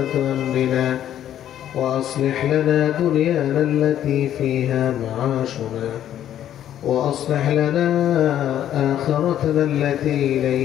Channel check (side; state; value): right; quieter; 11.1 dB